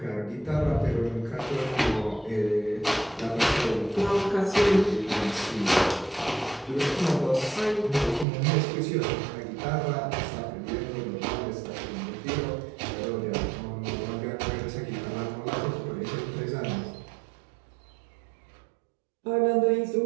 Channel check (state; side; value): drops out; left; at 8.2 s